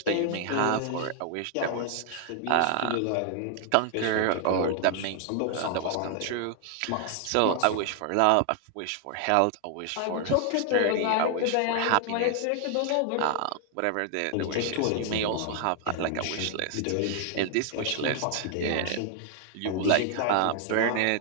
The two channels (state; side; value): different; both; correlation 0.00